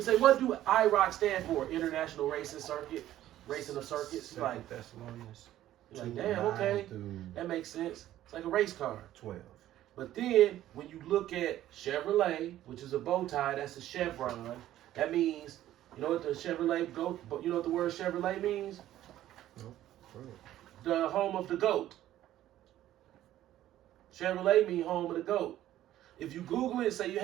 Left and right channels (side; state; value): left; quieter; 13.3 dB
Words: say, what do IROC stand for? International Racing Circuit, Racing of Circuits. You're like, damn, okay, that makes sense. It's like a race car. 12. But then when you look at Chevrolet, which is a bow tie, that's a chevron. That means, you know what the Chevrolet goat? You know what the word Chevrolet means? No. The home of the goat. Chevrolet means home of the goat. If you Google it and say,